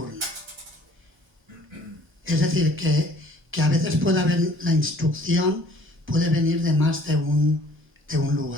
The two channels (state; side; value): normal; both; correlation 0.55